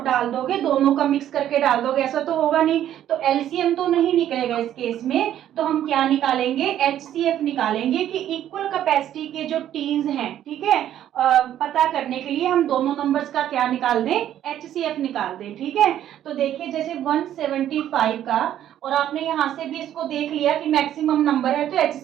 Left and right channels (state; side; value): quieter; left; 11.3 dB